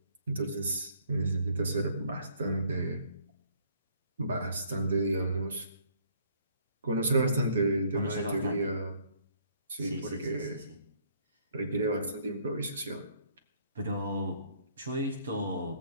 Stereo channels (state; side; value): inverted; both; correlation -0.64